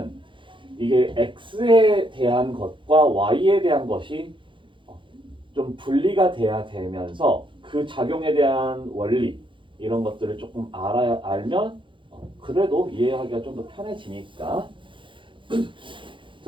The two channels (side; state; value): left; late; 0.24 ms